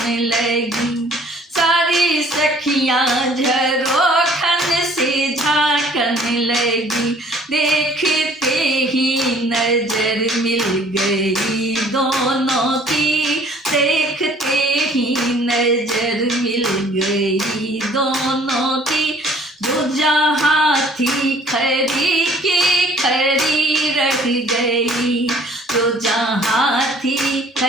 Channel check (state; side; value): normal; both; correlation 0.56